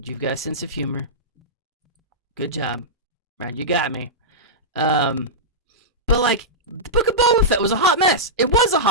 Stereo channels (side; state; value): both; normal; correlation -0.12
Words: You've got a sense of humor. Good job. Right, you got me. But like, the Book of Boba Fett was a hot mess. It was a